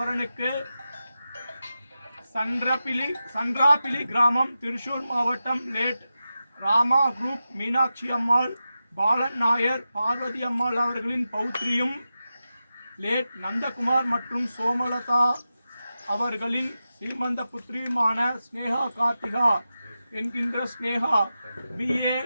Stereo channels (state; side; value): inverted; both; correlation -0.92